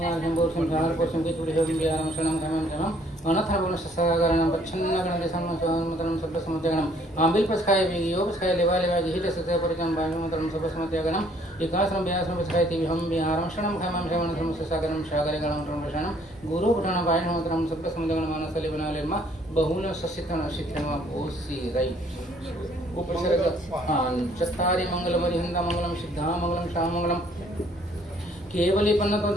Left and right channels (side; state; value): both; normal; correlation 0.62